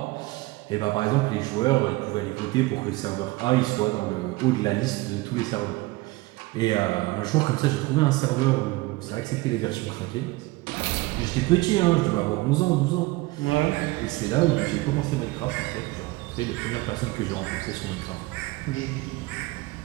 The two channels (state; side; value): quieter; left; 21.1 dB